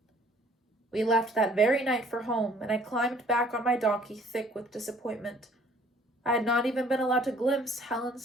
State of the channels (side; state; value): both; normal; correlation 0.58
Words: We left that very night for home, and I climbed back on my donkey, thick with disappointment. I had not even been allowed to glimpse